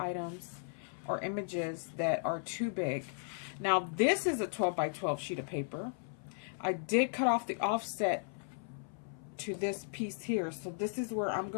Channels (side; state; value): right; silent; 54 dB below the other